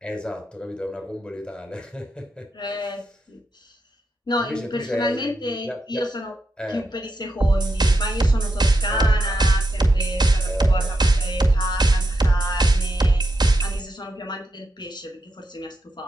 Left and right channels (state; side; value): normal; both; correlation 0.85